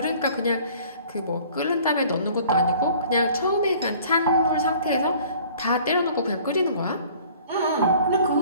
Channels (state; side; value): inverted; both; correlation -0.51